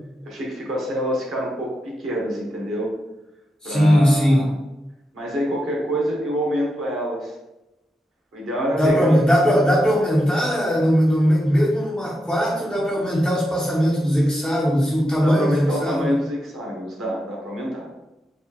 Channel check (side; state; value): both; normal; correlation 0.86